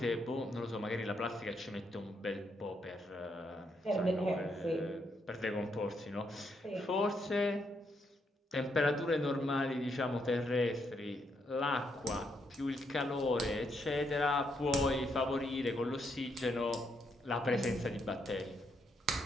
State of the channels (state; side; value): normal; both; correlation 0.77